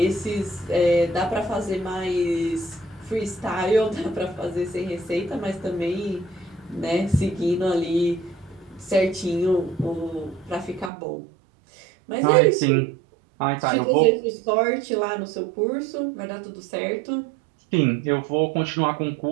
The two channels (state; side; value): drops out; left; at 10.9 s